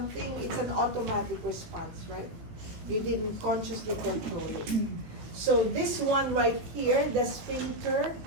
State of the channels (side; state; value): left; late; 18 ms